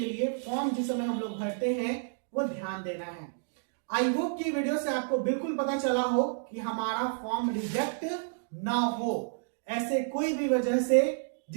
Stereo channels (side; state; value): left; silent; digital silence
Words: लिए फॉर्म जिस समय हम लोग भरते हैं वो ध्यान देना है। आई होप कि वीडियो से आपको बिल्कुल पता चला हो कि हमारा फॉर्म रिजेक्ट ना हो ऐसे कोई भी वजह से